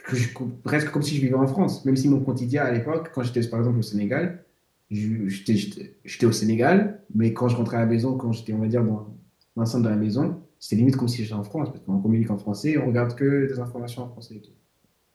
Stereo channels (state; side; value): identical; both; correlation 1.00